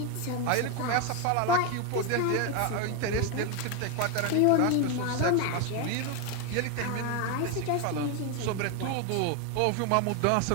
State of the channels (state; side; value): different; both; correlation 0.02